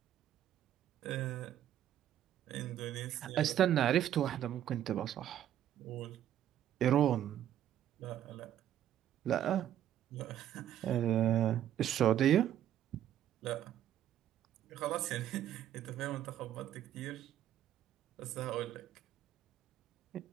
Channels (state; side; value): quieter; left; 11.3 dB